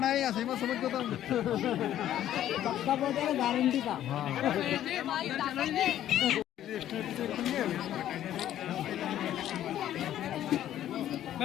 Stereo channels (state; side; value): quieter; right; 11.9 dB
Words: है ऐसे में समझ को तो पक्का बोलते हैं गारंटी का